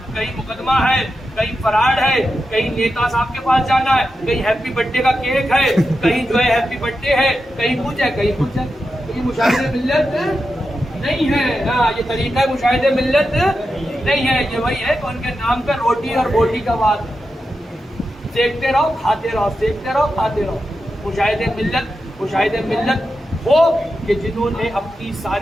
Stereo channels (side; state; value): both; normal; correlation 0.89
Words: کہیں مقدمہ ہے, کہیں فراڈ ہے, کہیں نیتا صاحب کے پاس جانا ہے, کہیں ہیپی برتھ ڈے کا کیک ہے, کہیں جو ہے ہیپی برتھ ڈے ہے, کہیں کچھ ہے کہیں کچھ ہے. یہ مشاہد ملت نہیں ہے. ہاں یہ طریقہ مشاہد ملت نہیں ہے. یہ وہی ہے کہ ان کے نام پہ روٹی اور بوٹی کا بات ہے. سیکتے رہو کھاتے رہو, سیکتے رہو کھاتے رہو. مشاہد ملت وہ کہ جنہوں نے اپنی